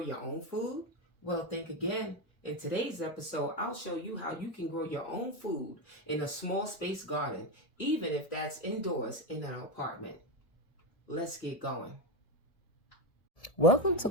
your own food? Well, think again. In today's episode, I'll show you how you can grow your own food in a small space garden, even if that's indoors in an apartment. Let's get going. Welcome to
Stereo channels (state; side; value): late; right; 1.7 ms